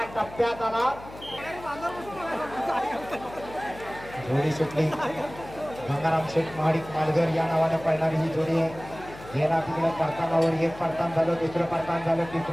टप्प्यात आला. जोडी सुटली. गंगाराम शेठ महाडिक मालघर या नावाने पळणारी ही जोडी आहे. गेला तिकडे परतानावर एक परतान झालं, दुसरं परतान झालं,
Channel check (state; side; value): noise; left; hum, 17 dB below the sound